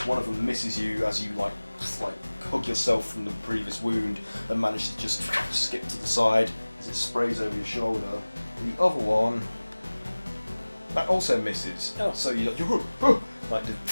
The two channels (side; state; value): both; inverted; correlation -1.00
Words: One of them misses you as you like hug yourself from the previous wound and manage to just skip to the side as it sprays over your shoulder. The other one, that also misses. Oh. So you like